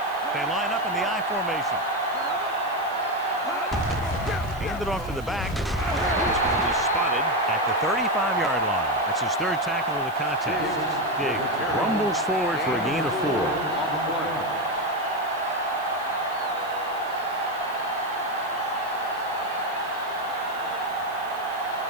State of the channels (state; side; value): noise; right; hiss, 23 dB below the sound